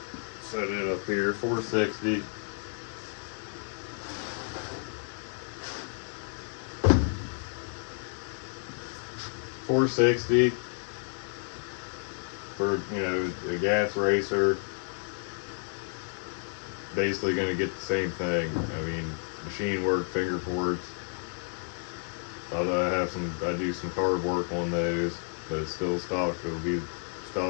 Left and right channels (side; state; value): right; silent; 57 dB below the other